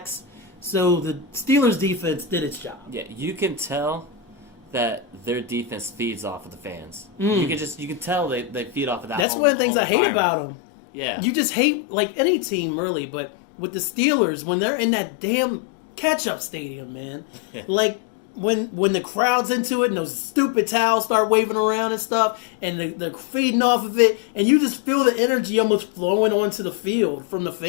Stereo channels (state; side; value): drops out; right; at 9.2 s